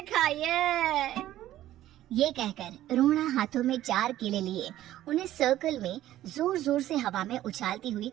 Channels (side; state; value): left; quieter; 13.7 dB